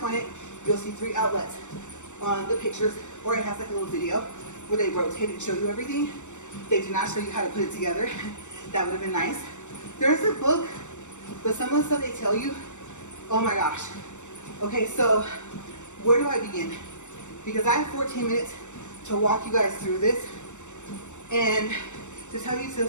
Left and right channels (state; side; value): late; right; 0.84 ms